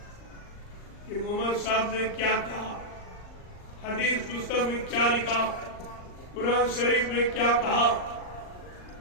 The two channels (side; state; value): right; late; 39 ms